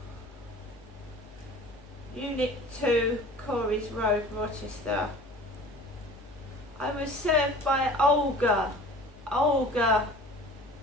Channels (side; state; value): both; normal; correlation 0.44